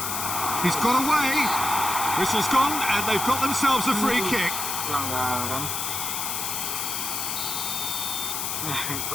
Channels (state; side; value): noise; left; hiss, 2 dB below the sound